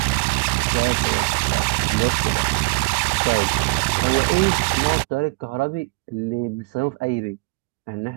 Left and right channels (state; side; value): quieter; left; 28.9 dB